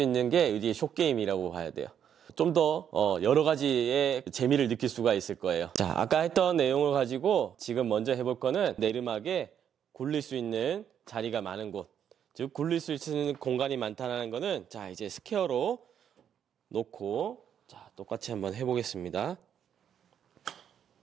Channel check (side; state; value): left; quieter; 8.9 dB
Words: 게 이게 숏게임이라고 봐야 돼요. 좀 더 여러 가지의 재미를 느낄 수가 있을 거예요. 자, 아까 했던 내용을 가지고 지금 먼저 해볼 거는 내리막에 굴릴 수 있는 자리가 많은 곳, 즉 굴릴 수 있는 공간이 많다는 거는, 자, 이제 스퀘어로 놓고, 자, 똑같이 한번 해보겠습니다.